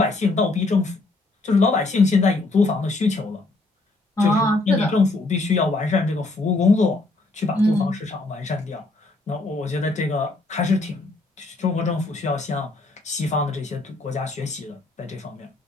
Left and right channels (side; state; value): right; quieter; 3.1 dB